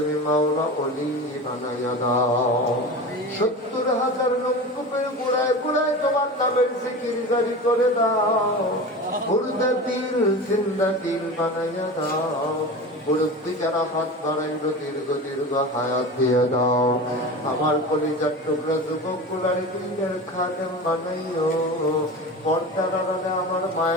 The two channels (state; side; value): normal; both; correlation 0.30